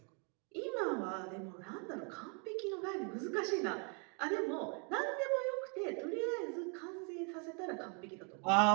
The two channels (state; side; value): quieter; left; 36.5 dB